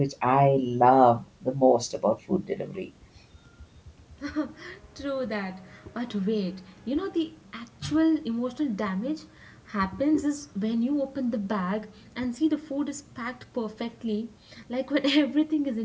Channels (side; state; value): both; identical; correlation 1.00